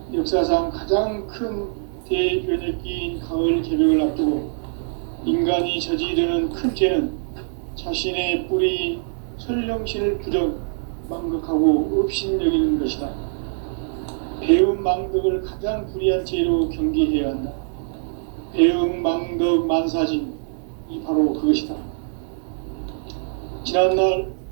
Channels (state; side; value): silent; left; digital silence